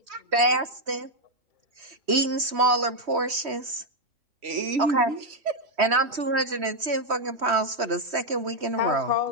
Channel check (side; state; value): left; late; 3.1 ms